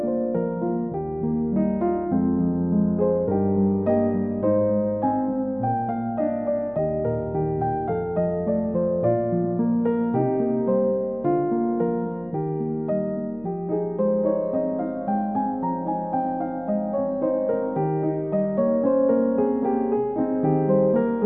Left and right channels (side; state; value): left; noise; hum, 26 dB below the sound